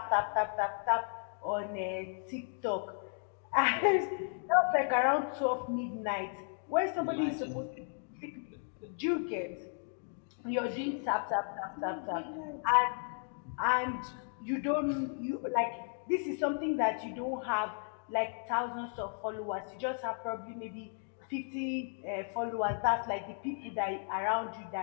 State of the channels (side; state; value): right; silent; 55 dB below the other